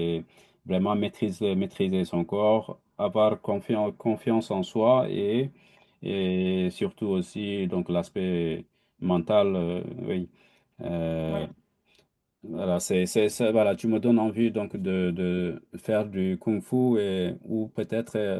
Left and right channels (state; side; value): identical; both; correlation 1.00